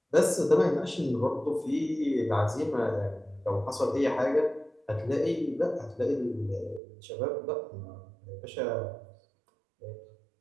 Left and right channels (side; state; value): left; drops out; at 6.8 s